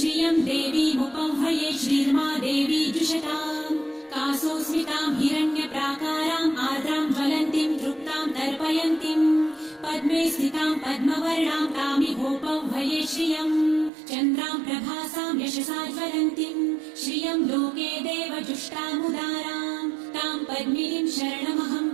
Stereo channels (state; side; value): drops out; left; at 13.9 s